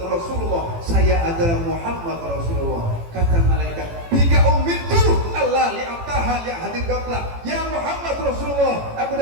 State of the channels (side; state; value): left; late; 18 ms